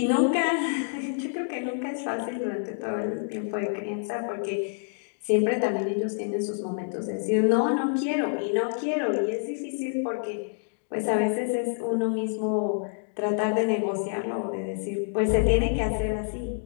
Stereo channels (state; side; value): silent; right; digital silence